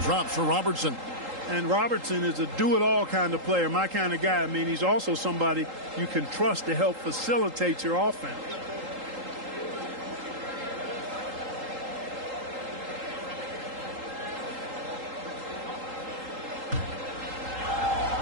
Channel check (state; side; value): late; left; 3.8 ms